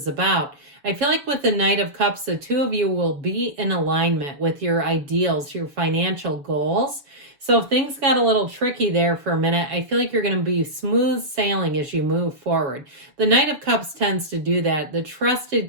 about, I feel like with the Knight of Cups, the two of you will be in alignment with your ideals, your financial goals. So if things got a little tricky there for a minute, I feel like you're going to be smooth sailing as you move forward. The Knight of Cups tends to do that, the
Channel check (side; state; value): left; late; 7.0 ms